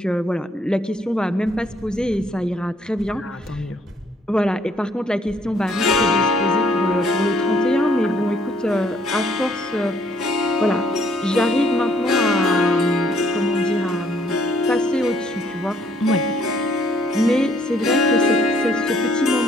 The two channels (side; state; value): both; normal; correlation 0.65